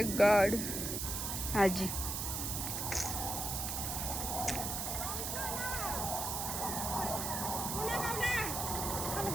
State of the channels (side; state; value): right; noise; hiss, 2 dB below the sound